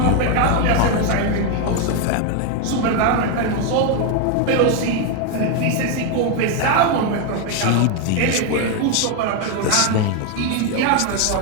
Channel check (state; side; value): different; both; correlation 0.01